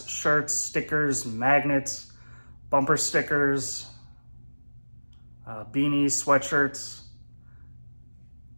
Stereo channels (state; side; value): inverted; both; correlation -1.00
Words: shirts, stickers, magnets, bumper stickers, beanies, sweatshirts,